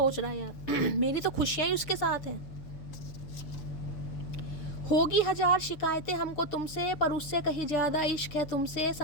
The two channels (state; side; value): late; right; 7.0 ms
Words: रहा है यार मेरी तो खुशियाँ ही उसके साथ हैं। होगी 1000 शिकायतें हमको तुमसे, पर उससे कहीं ज़्यादा इश्क है तुमसे,